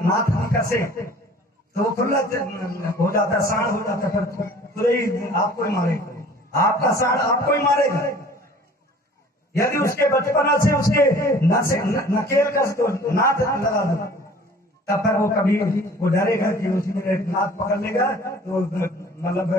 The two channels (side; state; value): both; normal; correlation 0.49